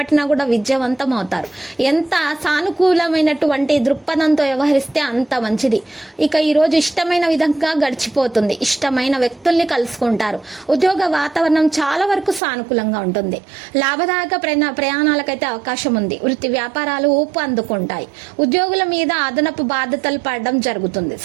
కూడా విజయవంతం అవుతారు. ఎంత సానుకూలమైనటువంటి దృక్పథంతో వ్యవహరిస్తే అంత మంచిది. ఇక ఈ రోజు ఇష్టమైన విధంగా గడిచిపోతుంది. ఇష్టమైన వ్యక్తుల్ని కలుసుకుంటారు. ఉద్యోగ వాతావరణం చాలా వరకు సానుకూలంగా ఉంటుంది. లాభదాయక ప్రయాణాలకైతే అవకాశం ఉంది. వృత్తి వ్యాపారాలు ఊపు అందుకుంటాయి. ఉద్యోగుల మీద అదనపు బాధ్యతలు పడడం జరుగుతుంది.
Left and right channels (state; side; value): drops out; left; at 12.4 s